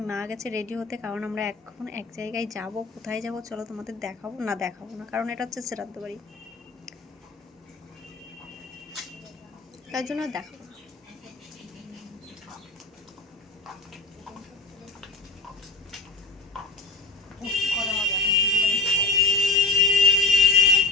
মা গেছে রেডি হতে, কারণ আমরা এখন এক জায়গায় যাব। কোথায় যাব চলো তোমাদের দেখাবো না, কারণ এটা হচ্ছে শ্রাদ্ধ বাড়ি, তার জন্য দেখাবো না।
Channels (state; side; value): quieter; right; 3.5 dB